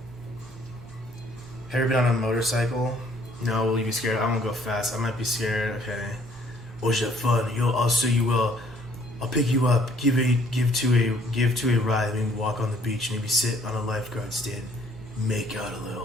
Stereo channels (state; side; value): normal; both; correlation 0.61